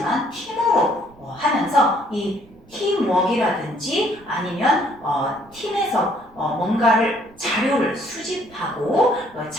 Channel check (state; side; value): noise; right; rumble, 27 dB below the sound